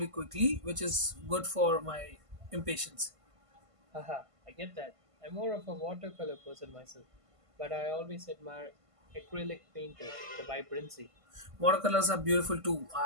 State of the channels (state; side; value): late; left; 1.5 ms